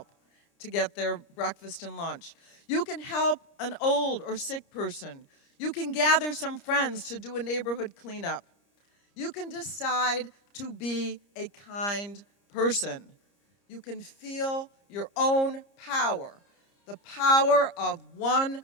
to get their breakfast and lunch. You can help an old or sick person. You can gather some friends to do a neighborhood cleanup. You can decide to be a kind person. You can feel your own power. The power of one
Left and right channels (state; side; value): late; right; 30 ms